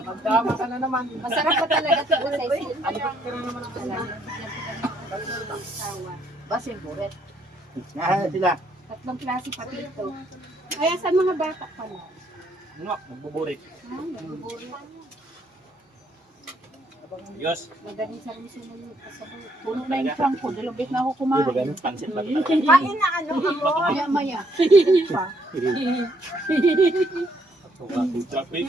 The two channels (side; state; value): both; normal; correlation 0.70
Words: Tama ka na naman. Masarap pa talaga ito sa Cecil. Basing buret. Sila. Tatlong klase pati ito. Kaya sa mga bata pala. Ano? Magbuburit. Diyos. Magaling sarong-suman yung kasabaw. puno na yung trunk ko. Dalawang beses na ako kumain. Pansit lang. Kain na ano mo. Maya-maya.